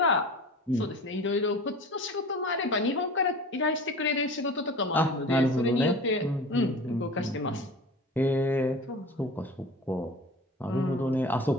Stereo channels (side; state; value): both; normal; correlation 0.38